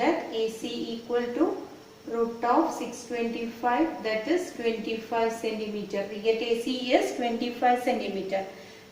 AC equal to root of 625, that is 25 centimeter. We get AC is 25 centimeter.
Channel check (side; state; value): both; identical; correlation 1.00